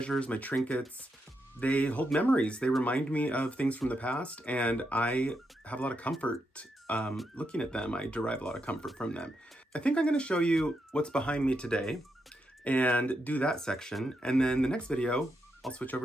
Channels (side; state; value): both; normal; correlation 0.82